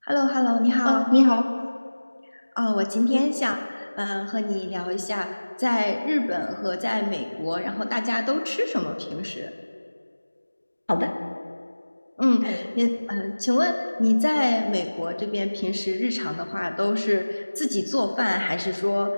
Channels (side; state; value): both; inverted; correlation -1.00